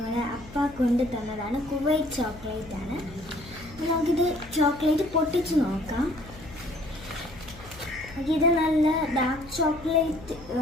അപ്പ കൊണ്ട് തന്നതാണ്. കുവൈറ്റ് ചോക്ലേറ്റ് ആണ്. നമുക്കിത് ചോക്ലേറ്റ് പൊട്ടിച്ച് നോക്കാം. ഇത് നല്ല ഡാർക്ക് ചോക്ലേറ്റ്,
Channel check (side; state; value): left; noise; hum, 18 dB below the sound